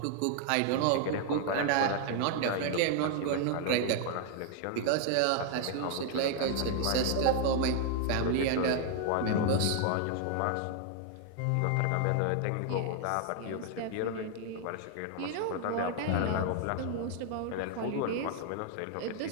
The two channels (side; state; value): both; different; correlation 0.00